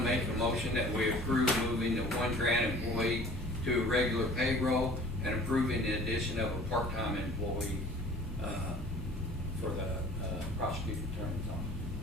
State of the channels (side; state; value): both; normal; correlation 0.48